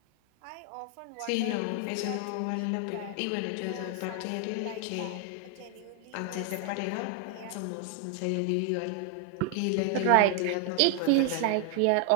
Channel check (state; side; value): different; both; correlation 0.00